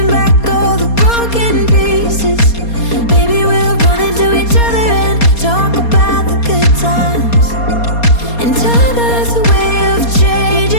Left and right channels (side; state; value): right; late; 4.2 ms